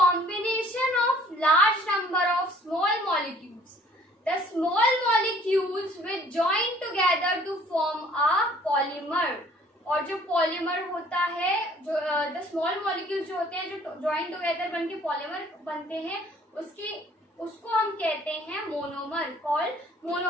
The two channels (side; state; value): both; normal; correlation 0.56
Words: of large number of small molecules. The small molecules which join together to form a polymer. और जो polymer होता है, जो the small molecules जो होते हैं, जो join together बनके पॉलीमर बनते हैं, उसको हम कहते हैं मोनोमर, कॉल्ड